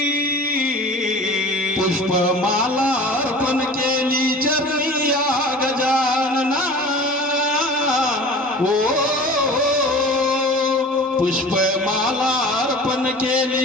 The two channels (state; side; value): normal; both; correlation 0.40